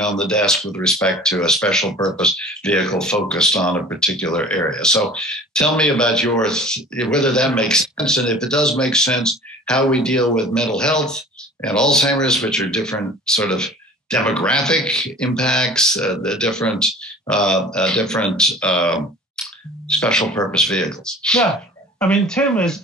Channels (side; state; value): both; normal; correlation 0.43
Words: the desk with respect to a special purpose vehicle focused on a particular area. So tell me about whether that makes sense, and if it does make sense, how we deal with mental health and Alzheimer's, which are different sort of demographic impacts, the different special purpose vehicles. Yeah, I mean, Tim